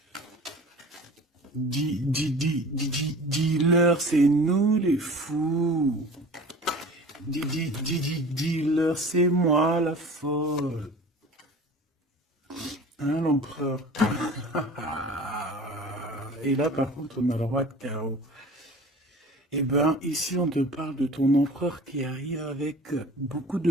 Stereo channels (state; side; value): normal; both; correlation 0.41